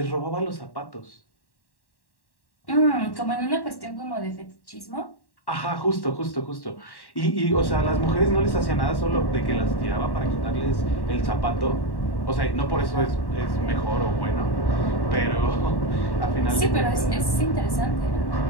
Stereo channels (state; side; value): late; right; 1.1 ms